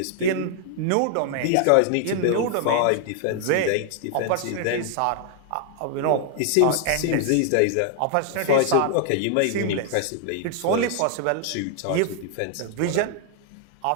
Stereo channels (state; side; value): different; both; correlation 0.00